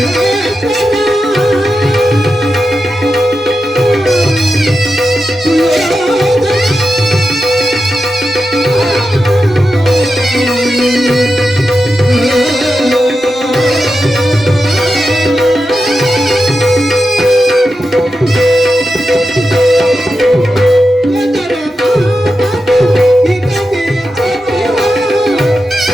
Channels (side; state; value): both; normal; correlation 0.89